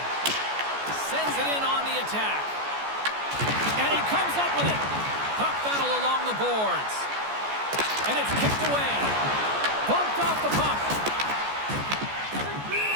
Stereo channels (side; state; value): left; late; 14 ms